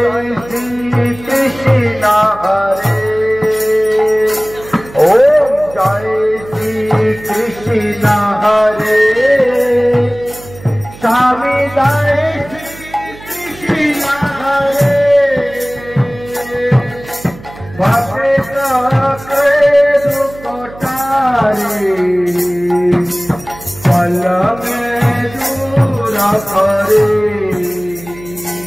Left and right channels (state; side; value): noise; right; hum, 18 dB below the sound